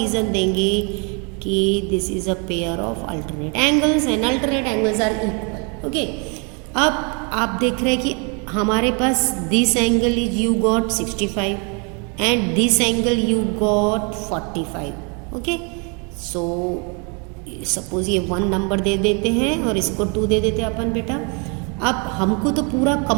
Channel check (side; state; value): left; quieter; 34.6 dB